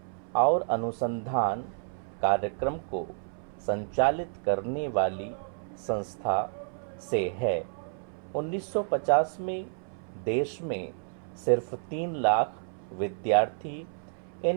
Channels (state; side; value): silent; left; 58 dB below the other